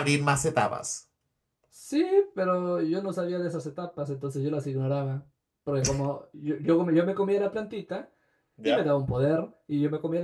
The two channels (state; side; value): identical; both; correlation 1.00